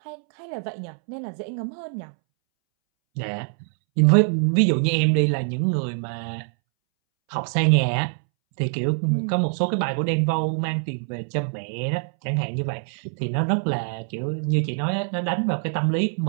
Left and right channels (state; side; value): silent; left; 62 dB below the other